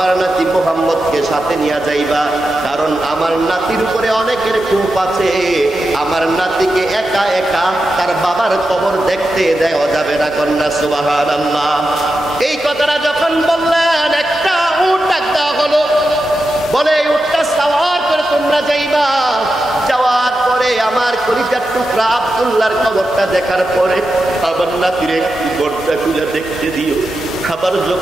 নাতি মুহাম্মদকে সাথে নিয়ে যাইবা, কারণ আমার নাতির উপরে অনেকের ক্ষোভ আছে। আমার নাতিকে একা একা তার বাবার কবর দেখতে দেওয়া যাবে না। কন্যা সুবহানাল্লাহ। এই কথাটা যখন বললেন, একটা উট ডাক দেওয়া হলো। বলে, এই উটটা সাওয়ার করে তোমরা যাইবা। যাওয়ার পরে আমার কলিজার টুকরা আব্দুল্লাহর কবরটা দেখার পরে আমার নাতির একটু গড়টা খুলে দেখতে দিও। আবার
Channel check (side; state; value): both; normal; correlation 0.89